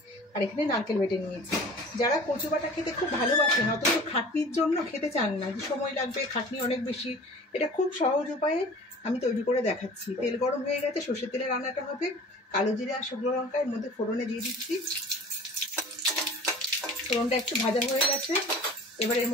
আর এখানে নারকেল বেটে নিয়েছি। যারা কচু বাটা খেতে খুব ভালোবাসেন, অথচ খাটনির জন্য খেতে চান না, যে সময় লাগবে, খাটনি অনেক বেশি, এটা খুব সহজ উপায়ে আমি তৈরি করে দেখাচ্ছি। তেল গরম হয়ে গেছে, সর্ষের তেলে রান্নাটা হবে। কালো জিরে আর শুকনো লঙ্কা এর মধ্যে ফোড়নে দিয়ে দিচ্ছি। ফোড়নটা একটু ভাজা হয়ে গেছে, এবার এর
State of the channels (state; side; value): normal; both; correlation 0.43